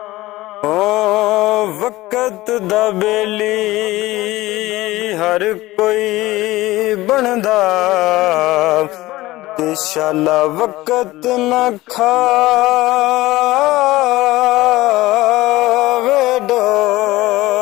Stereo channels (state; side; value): quieter; right; 18.2 dB